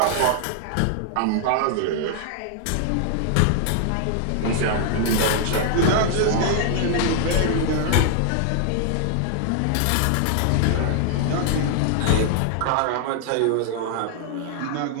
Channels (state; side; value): different; both; correlation 0.00